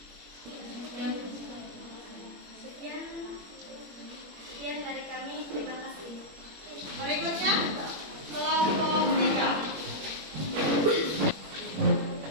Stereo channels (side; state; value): left; late; 21 ms